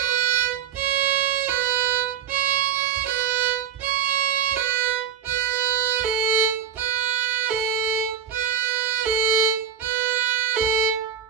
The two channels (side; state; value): left; quieter; 8.3 dB